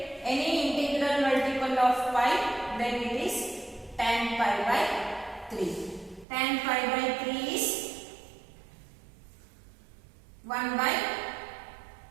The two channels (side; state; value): left; drops out; at 6.2 s